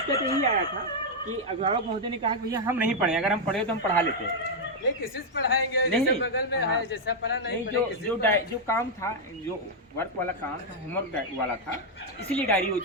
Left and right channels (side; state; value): both; normal; correlation -0.01